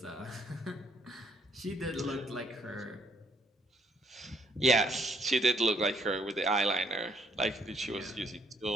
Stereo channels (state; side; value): normal; both; correlation 0.68